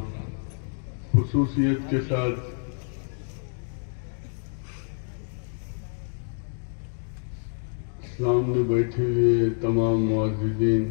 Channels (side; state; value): right; silent; 57 dB below the other